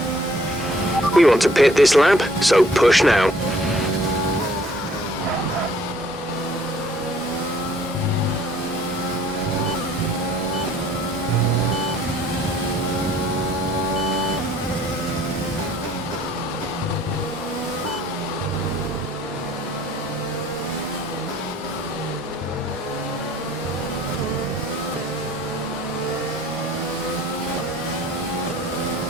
We want to pit this lap, so push now.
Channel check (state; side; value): normal; both; correlation 0.58